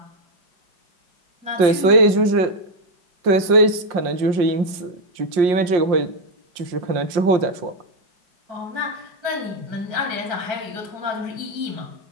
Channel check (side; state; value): left; late; 5.6 ms